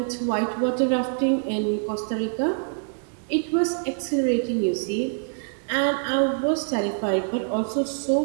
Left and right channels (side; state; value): left; silent; 62 dB below the other